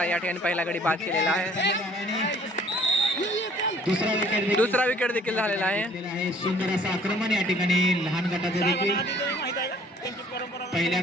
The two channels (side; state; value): both; normal; correlation 0.56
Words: या ठिकाणी पहिला गडी बाद केलेला आहे। दुसरा विकेट देखील झालेला आहे। सुंदर असं आक्रमण या ठिकाणी लहान गटाचे देखील पहिल्या